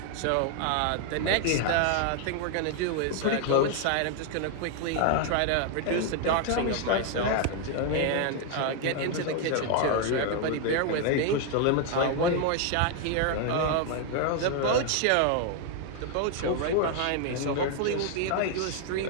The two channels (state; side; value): different; both; correlation 0.00